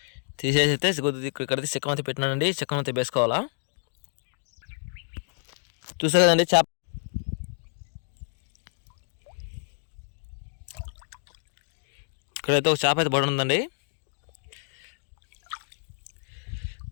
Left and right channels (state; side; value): silent; right; digital silence